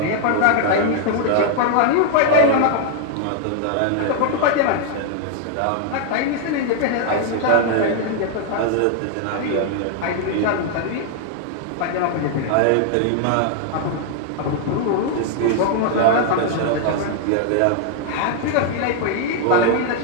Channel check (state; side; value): different; both; correlation 0.00